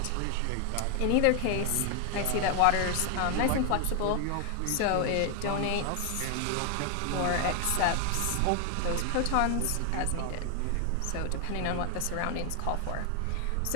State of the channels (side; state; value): both; different; correlation 0.00